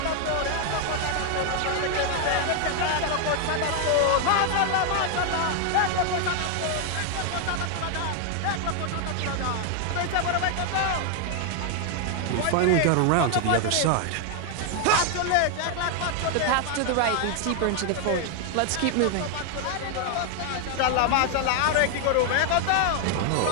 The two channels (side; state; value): both; different; correlation 0.00